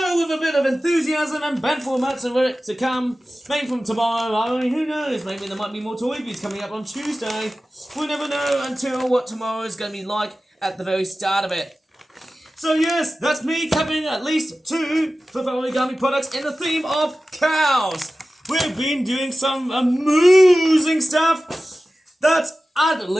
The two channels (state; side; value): normal; both; correlation 0.95